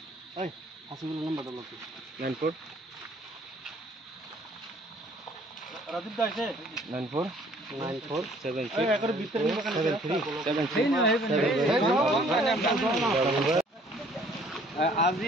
এই হাসিবুল নাম্বারটা লও 94 রাজীব দা আছে 94 74 এই একর ভিতরে নিবা কেন 73 আজি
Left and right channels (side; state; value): both; normal; correlation 0.58